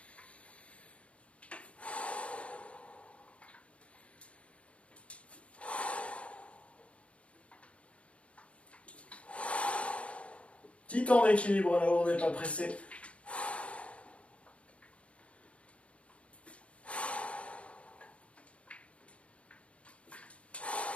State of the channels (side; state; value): right; late; 0.062 ms